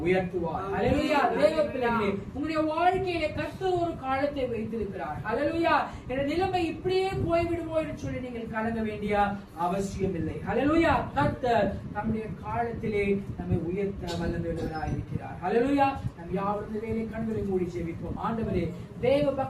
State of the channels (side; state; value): both; identical; correlation 1.00